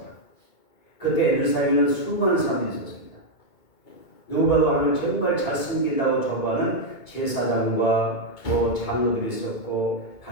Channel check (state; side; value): late; right; 2.2 ms